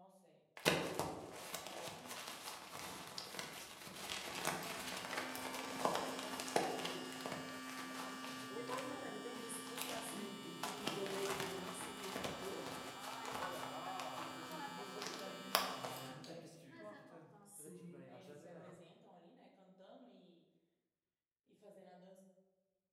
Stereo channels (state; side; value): identical; both; correlation 1.00